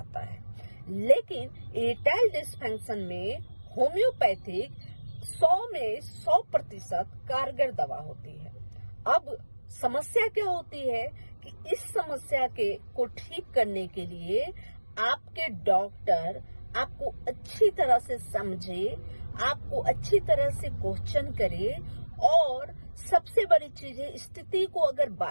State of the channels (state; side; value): inverted; both; correlation -1.00